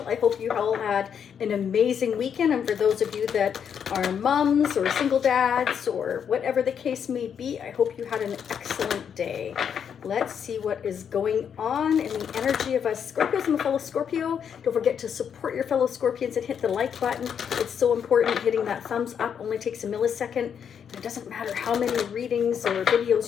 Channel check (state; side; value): quieter; right; 7.8 dB